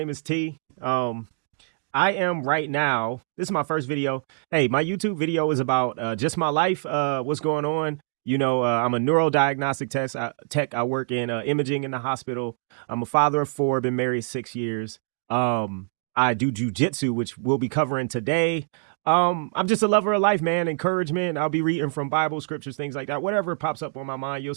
is T. I am right now. This is my first video. Hey, my YouTube video is about just my life. What's going on? I'm a neurodiagnostic tech. I work in imaging in the hospital. I'm a father of four. Been married 6 years. I do jujitsu, which we'll be covering today. I'm just a lover of life, man. Encouragement. I'll be reading from Bible scriptures, things like that. Whatever pops up on my mind. You'll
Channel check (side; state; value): left; silent; digital silence